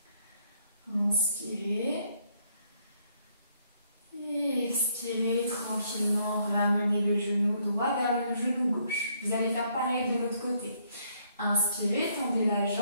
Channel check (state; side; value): inverted; both; correlation -0.70